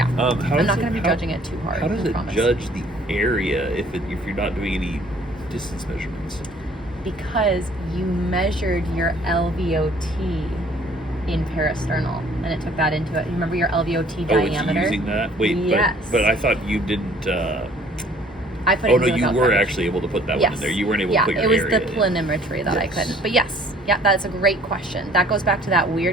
How I'm not going to be judging it too hard. How does I it promise. judge the area if you're not doing any distance measurements? Because you measured your LVOT in parasternal, and it took that into it. You remember your LVOT diameter? It's using that? Wait, yes. but I thought you didn't. I put Oh it no, in the you calc were package. actually able to put that Yes. one in there. You weren't able yeah, to put your it was area the in. planimetry that I Yes. couldn't. But yes, yeah, that's a great question. That goes back to that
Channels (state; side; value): normal; both; correlation 0.56